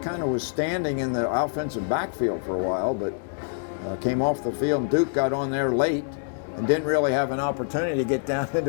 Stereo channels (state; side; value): silent; right; 61 dB below the other